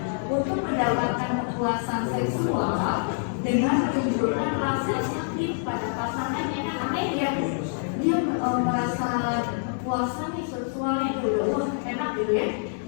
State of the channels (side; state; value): right; silent; digital silence